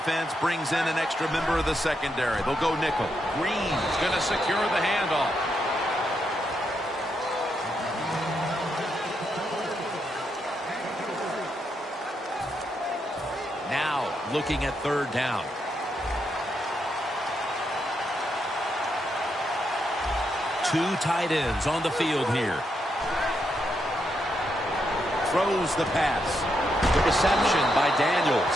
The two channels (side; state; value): both; normal; correlation 0.81